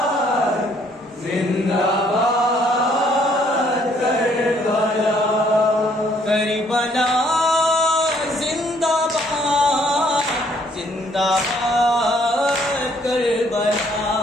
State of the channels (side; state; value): both; normal; correlation 0.65